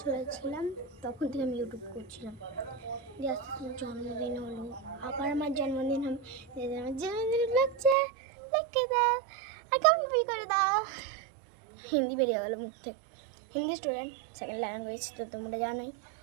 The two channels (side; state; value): left; drops out; at 8.0 s